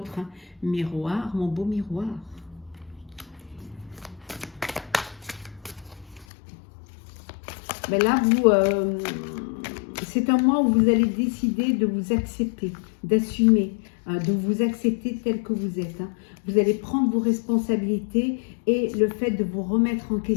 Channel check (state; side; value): drops out; right; at 6.2 s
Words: Miroir, mon beau miroir. Ben là, c'est un mois où vous allez décider de vous accepter, d'assumer, de vous accepter tel que vous êtes. Hein. Vous allez prendre vos responsabilités et le fait de vous remettre en